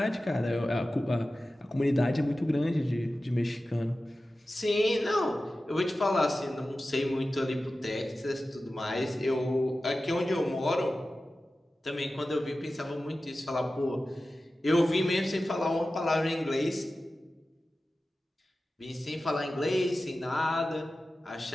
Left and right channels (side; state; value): both; normal; correlation 0.95